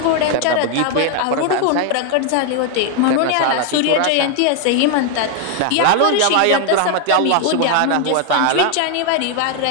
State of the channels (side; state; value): both; different; correlation 0.01